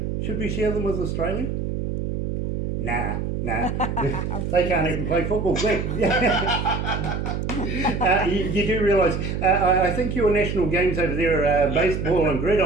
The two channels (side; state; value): right; noise; hum, 3 dB below the sound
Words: should we share them with Australia? Nah. They can't even play football. You do realise, I think your national games over there are baseball and